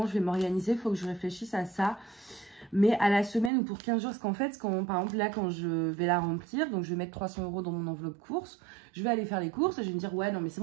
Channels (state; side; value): drops out; left; at 3.5 s